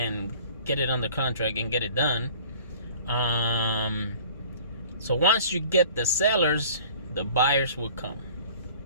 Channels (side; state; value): both; inverted; correlation -0.48